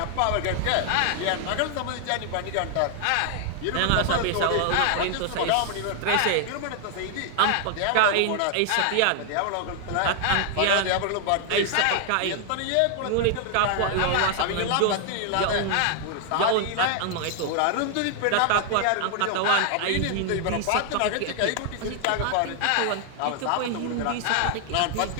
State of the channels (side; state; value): both; different; correlation 0.00